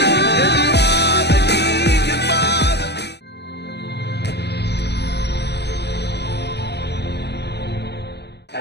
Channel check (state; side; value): late; right; 0.49 ms